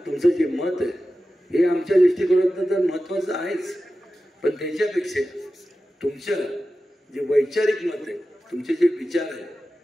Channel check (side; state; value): both; normal; correlation 0.94